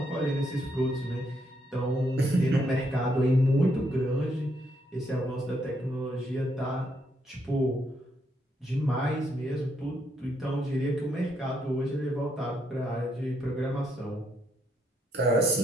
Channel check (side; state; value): both; normal; correlation 0.75